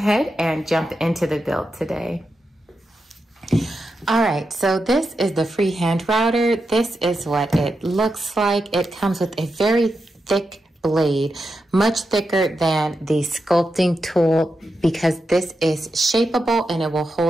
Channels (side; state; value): both; normal; correlation 0.88